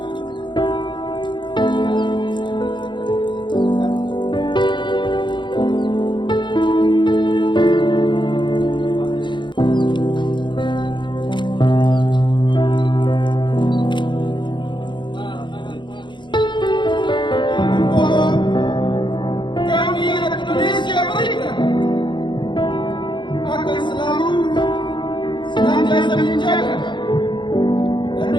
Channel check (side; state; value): right; late; 0.23 ms